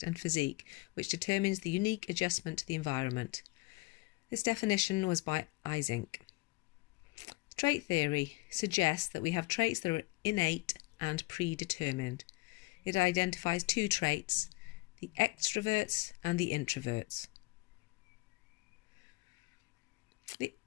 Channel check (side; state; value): right; quieter; 24.1 dB